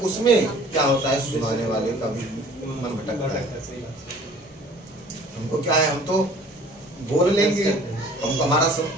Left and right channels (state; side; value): normal; both; correlation 0.50